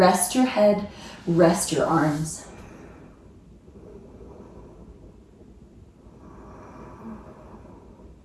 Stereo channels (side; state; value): both; identical; correlation 1.00